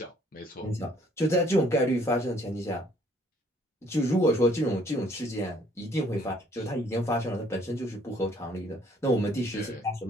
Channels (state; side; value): normal; both; correlation 0.62